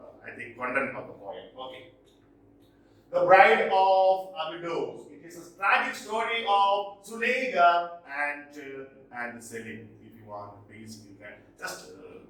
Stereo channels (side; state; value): both; identical; correlation 1.00